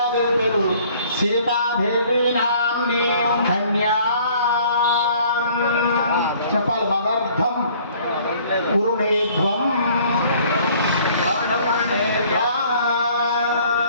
పేరు సీతాదేవి నామ్నీం కన్యా. చెప్పాలి. మదర్థం కురుణేధ్వం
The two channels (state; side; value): inverted; both; correlation -0.56